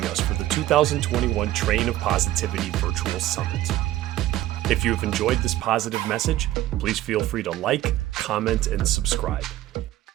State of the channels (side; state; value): left; quieter; 14.8 dB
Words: us for the 2021 Train of Positivity Virtual Summit. If you have enjoyed this positive message, please feel free to like, comment, and subscribe.